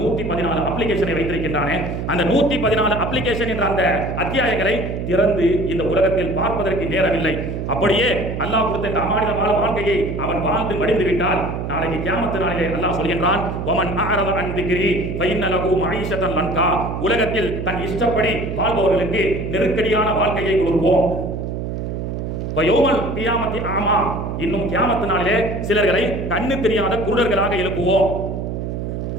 அப்ளிகேஷனை வைத்திருக்கின்றானே. அந்த 114 அப்ளிகேஷன் என்ற அந்த அத்தியாயங்களை திறந்து இந்த உலகத்தில் பார்ப்பதற்கு நேரமில்லை. அப்படியே அல்லாஹ் கொடுத்த இந்த அமானித வாழ்க்கையை அவன் வாழ்ந்து மடிந்து விட்டால் நாளைக்கு கியாமத் நாளிலே அல்லாஹ் சொல்கின்றான், வமன் அஅரத அன் திக்ரி ஃபஇன்ன லஹு மஈஷத்தன் லன்கா, உலகத்தில் தன் இஷ்டப்படி வாழ்பவர்களுக்கு நெருக்கடியான வாழ்க்கையை கொடுப்போம். வயோமல் கியாமத்தி ஆமா, இன்னும் கியாமத் நாளிலே சிலர்களை கண்ணு தெரியாத குருடர்களாக எழுப்புவோம்.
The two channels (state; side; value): noise; right; hum, 4 dB below the sound